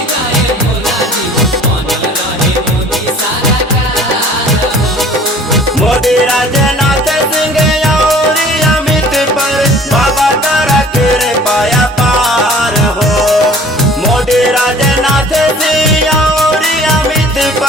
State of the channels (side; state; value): both; normal; correlation 0.49